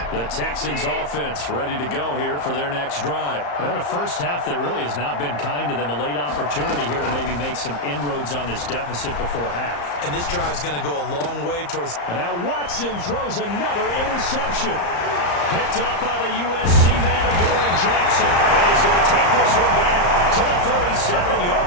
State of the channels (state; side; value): late; right; 34 ms